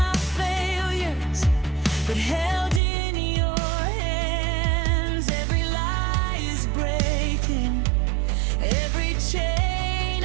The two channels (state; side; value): drops out; left; at 2.8 s